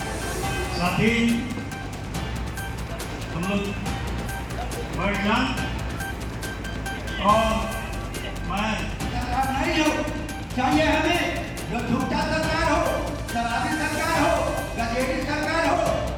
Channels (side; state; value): both; identical; correlation 1.00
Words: साथी हम लोग बढ़िया और मैं नहीं हो चाहिए हमें जो झूठा सरकार हो, शराबी सरकार हो, गजेटी सरकार हो,